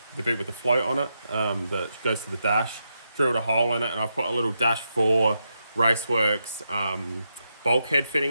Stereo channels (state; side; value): inverted; both; correlation -0.84